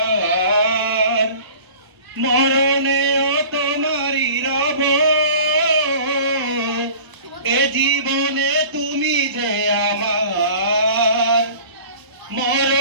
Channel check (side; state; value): left; late; 1.0 ms